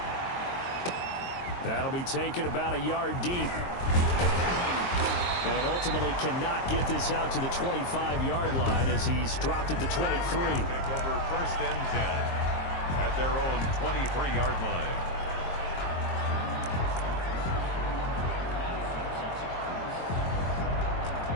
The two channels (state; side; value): late; right; 22 ms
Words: That'll be taken about a yard deep. And ultimately cannot get this out to the 25-yard line as he's dropped at the 23. Take over 1st and 10 at their own 23-yard line.